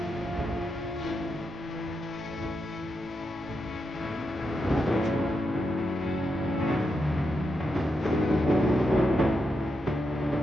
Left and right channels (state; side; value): noise; right; rumble, 21 dB below the sound